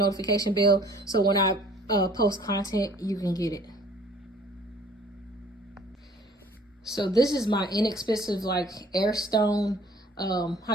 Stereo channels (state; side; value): normal; both; correlation 0.54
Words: bell, so when I post content, you can get it. So this is my inexpensive like air stone